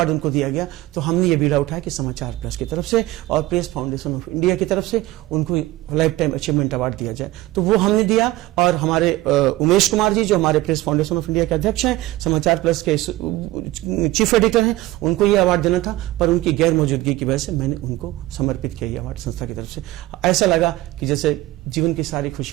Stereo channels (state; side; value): quieter; left; 17.5 dB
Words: उनको दिया गया, तो हमने ये बीड़ा उठाया कि समाचार प्लस की तरफ से और प्रेस फाउंडेशन ऑफ इंडिया की तरफ से उनको लाइफ टाइम अचीवमेंट अवार्ड दिया जाए। तो वो हमने दिया, और हमारे उमेश कुमार जी जो हमारे प्रेस फाउंडेशन ऑफ इंडिया के अध्यक्ष हैं, समाचार प्लस के चीफ एडिटर हैं, उनको ये अवार्ड देना था, पर उनकी गैर मौजूदगी की वजह से मैंने उनको समर्पित किया ये अवार्ड संस्था की तरफ से। ऐसा लगा कि जैसे जीवन की सारी